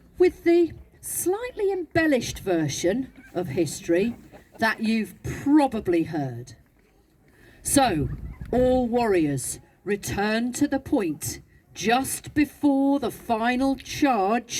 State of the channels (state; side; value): identical; both; correlation 1.00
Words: with the slightly embellished version of history that you've probably heard. So, all warriors, return to the point just before the final